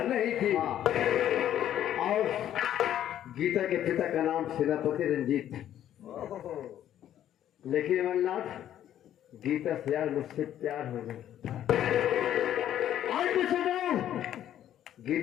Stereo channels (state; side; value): quieter; right; 11.2 dB